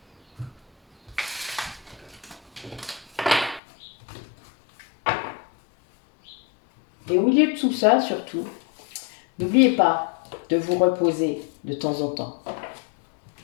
Et au milieu de tout ça, surtout, n'oubliez pas de vous reposer de temps en temps.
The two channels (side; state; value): right; drops out; at 3.6 s